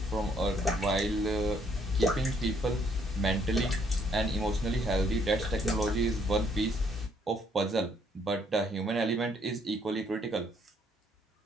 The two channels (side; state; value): both; normal; correlation 0.68